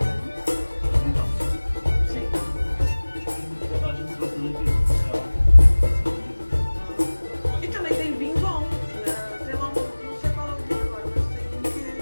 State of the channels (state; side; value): inverted; both; correlation -1.00